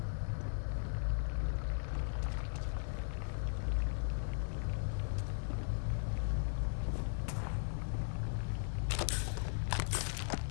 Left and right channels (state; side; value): silent; right; digital silence